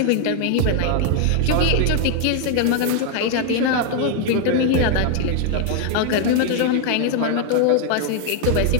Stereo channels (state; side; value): different; both; correlation 0.00